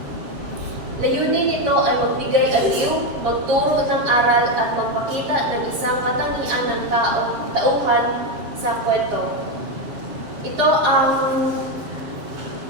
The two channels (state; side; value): late; left; 7.5 ms